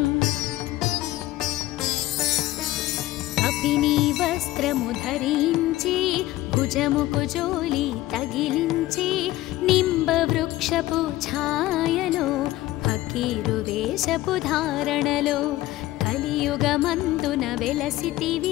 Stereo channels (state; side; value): quieter; right; 16.4 dB